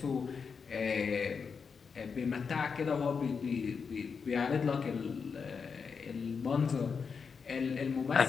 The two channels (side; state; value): right; quieter; 5.7 dB